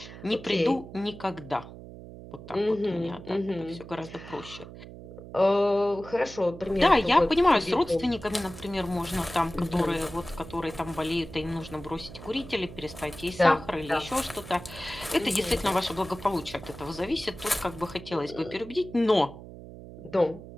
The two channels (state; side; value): noise; right; hum, 15 dB below the sound